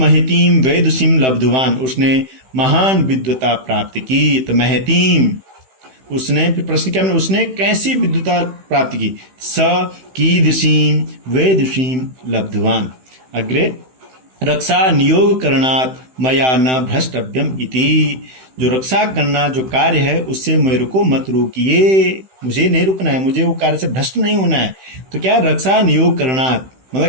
वैदुषीं लब्धवान, उसने महान विद्वता प्राप्त की। तो महतीं उसने, फिर प्रश्न क्या बना? उसने कैसी विद्वता प्राप्त की? स कीदृशीं वैदुषीं लब्धवान। अग्रे रक्षा नियोग करणात् मया न भ्रष्टव्यम इति, जो रक्षा करना जो कार्य है उससे मेरे को मत रोकिए, मुझे नहीं रुकना है, मुझे वो कार्य से भ्रष्ट नहीं होना है। तो क्या रक्षा नियोग करणात्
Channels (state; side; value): late; left; 16 ms